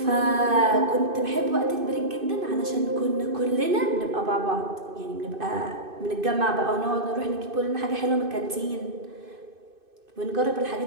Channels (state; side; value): late; left; 2.5 ms